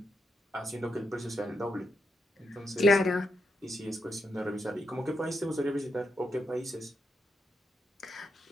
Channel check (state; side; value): normal; both; correlation 0.82